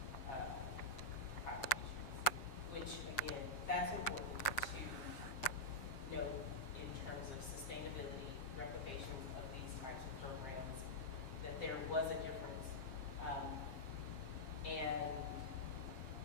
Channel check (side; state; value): right; late; 7.4 ms